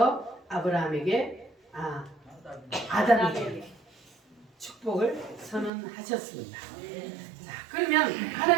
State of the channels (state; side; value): drops out; left; at 5.7 s